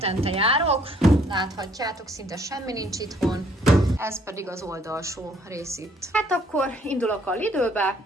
járok, láthatjátok, szinte semmi nincs itthon, ez pedig az oldalsó rész itt. Hát akkor indulok a Lidlbe,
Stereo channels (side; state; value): both; normal; correlation 0.63